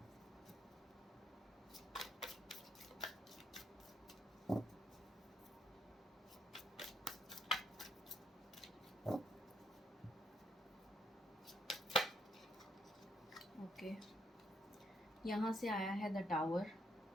Okay, यहाँ से आया है द टावर।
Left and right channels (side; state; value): both; normal; correlation 0.73